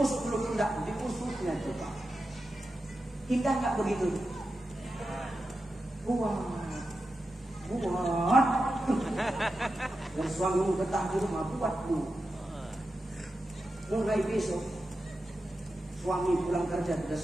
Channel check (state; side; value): normal; both; correlation 0.91